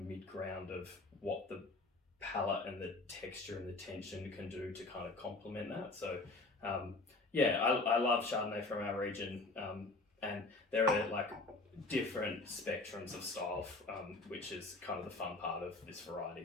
ground of what the palate and the texture and the tension can do to kind of complement that. So I love Chardonnay from our region, and there are like different spectrums of style, which is kind of the fun part of this variety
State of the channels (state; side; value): quieter; right; 3.3 dB